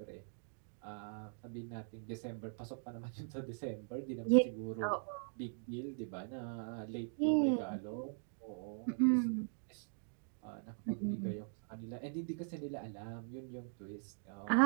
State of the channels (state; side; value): silent; left; digital silence